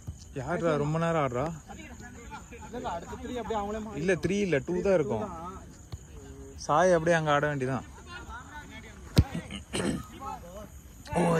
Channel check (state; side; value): identical; both; correlation 1.00